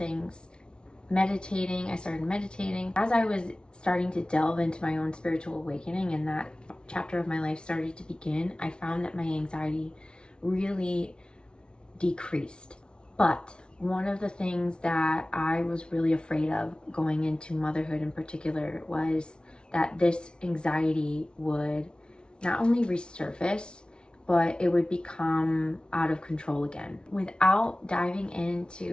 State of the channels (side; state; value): right; late; 0.055 ms